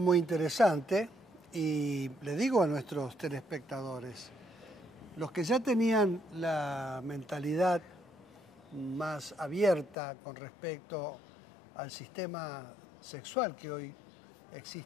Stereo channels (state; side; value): drops out; right; at 10.0 s